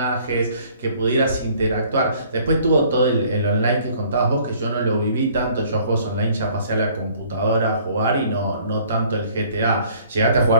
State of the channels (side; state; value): both; inverted; correlation -0.57